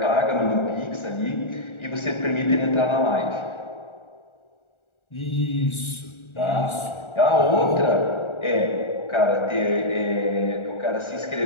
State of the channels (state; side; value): late; right; 1.4 ms